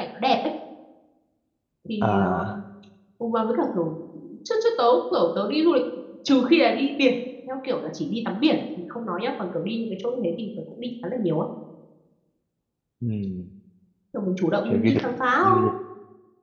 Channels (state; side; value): identical; both; correlation 1.00